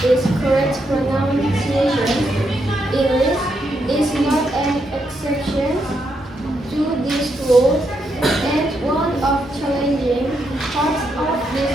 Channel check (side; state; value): both; normal; correlation 0.80